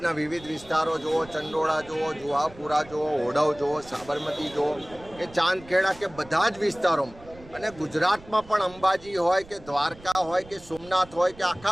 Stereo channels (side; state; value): right; noise; rumble, 21 dB below the sound